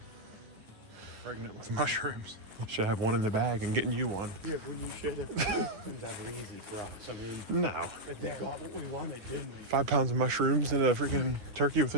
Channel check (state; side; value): late; left; 9.3 ms